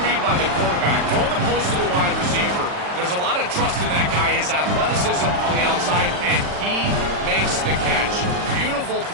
read by the quarterback. Throwing the post to the wide receiver. There's a lot of trust in that guy, his athleticism on the outside, and he makes the catch. Beautiful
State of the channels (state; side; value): late; left; 40 ms